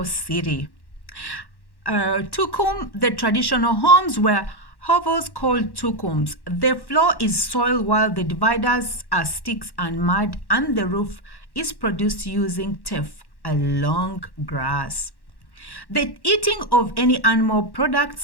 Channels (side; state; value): right; late; 1.1 ms